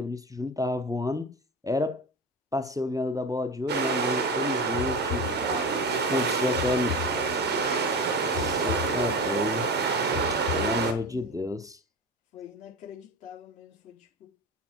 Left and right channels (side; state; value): both; normal; correlation 0.27